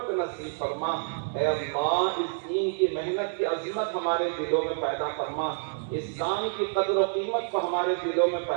نصیب فرما، اے اللہ اس دین کی محنت کی عظمت ہمارے دلوں میں پیدا فرما، اس کام کی قدر و قیمت کو ہمارے دلوں میں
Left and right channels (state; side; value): silent; left; 59 dB below the other